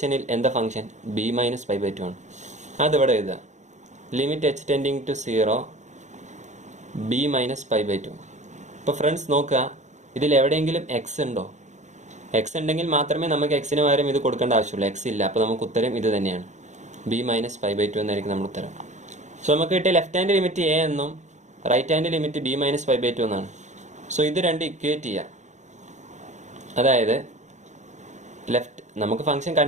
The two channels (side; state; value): left; late; 0.34 ms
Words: എന്താ function? B minus pi by 2 ആണ്. അതിവിടെ എഴുതുക. Limit h tending to 0 b minus pi by 2. ഇപ്പോൾ ഫ്രണ്ട്സ് നോക്കുക, ഇതിൽ എവിടെയെങ്കിലും എക്സ് ഉണ്ടോ? എക്സ് ഉണ്ടെങ്കിൽ മാത്രമേ നമുക്ക് എക്സിന് പകരം ഇത് കൊടുക്കേണ്ട ആവശ്യമുള്ളൂ. എക്സ് ഇല്ല, അപ്പോൾ നമുക്ക് ഉത്തരം ഇത് തന്നെയാണ്, ബി മൈനസ് പൈ ബൈ 2 എന്നായിരിക്കും നമ്മുടെ ഉത്തരം. സോ നമുക്ക് കിട്ടിയ ലെഫ്റ്റ് ഹാൻഡ് ലിമിറ്റ് എ എന്നും right hand limit b minus pi by 2 എന്നാണ്. സോ ഇത് രണ്ട് ഇക്വേറ്റ് ചെയ്യുക. അതായത് നമുക്ക് ഫംഗ്ഷൻ